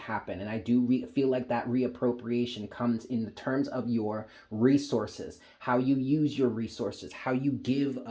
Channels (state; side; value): identical; both; correlation 1.00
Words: And I do feel like that reappropriation comes in the terms of your resources, how you use your resources, how you give